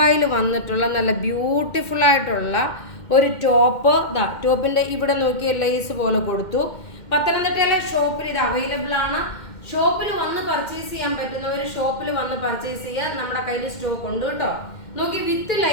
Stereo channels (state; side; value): late; right; 2.1 ms